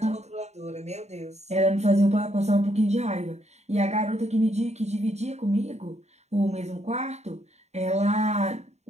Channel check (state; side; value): late; left; 0.32 ms